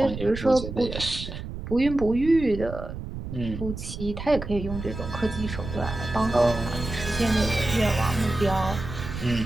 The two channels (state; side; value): noise; right; rumble, 8 dB below the sound